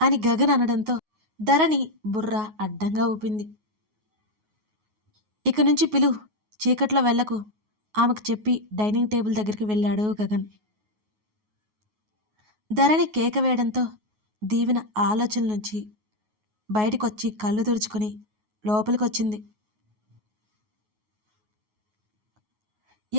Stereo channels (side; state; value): left; late; 9.4 ms